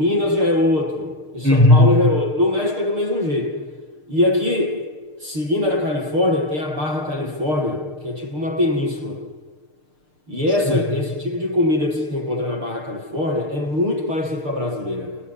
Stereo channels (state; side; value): late; left; 6.6 ms